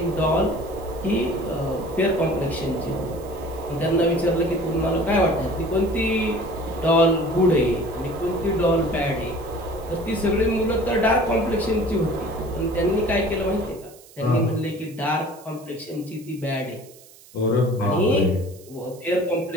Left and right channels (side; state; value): right; noise; hiss, 23 dB below the sound